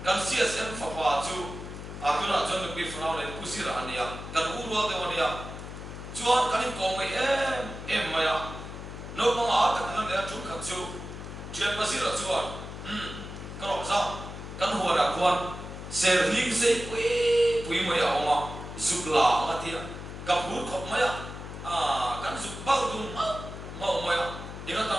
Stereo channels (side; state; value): left; noise; hum, 10 dB below the sound